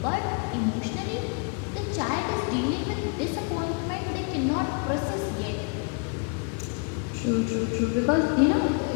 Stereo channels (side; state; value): right; quieter; 36.0 dB